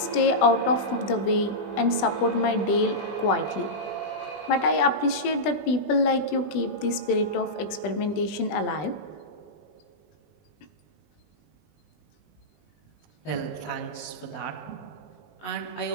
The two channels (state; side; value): late; right; 20 ms